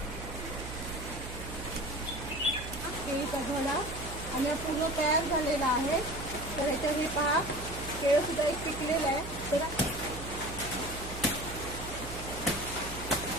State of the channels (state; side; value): noise; right; hum, 9 dB below the sound